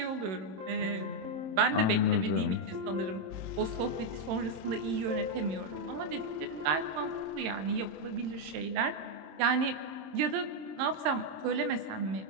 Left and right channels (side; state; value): left; late; 26 ms